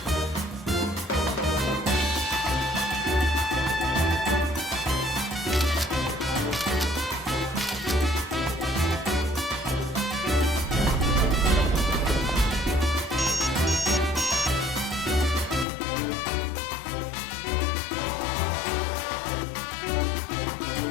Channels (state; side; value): drops out; right; at 15.7 s